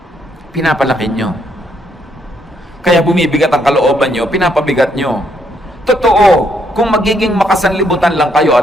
pinapalaki nyo. Kaya bumibigat ang kalooban nyo, pinapabigat nyo. Totoo, kung magiging makasanlibutan lang kayo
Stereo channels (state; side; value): normal; both; correlation 0.73